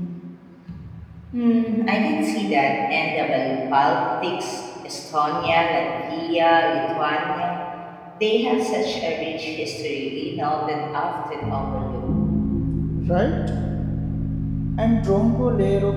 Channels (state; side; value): identical; both; correlation 1.00